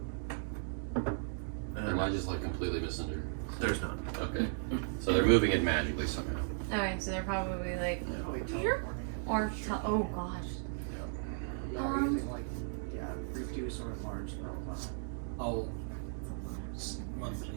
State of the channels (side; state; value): left; silent; digital silence